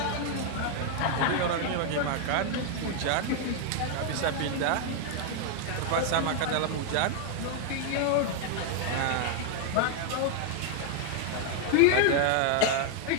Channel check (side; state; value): both; different; correlation 0.00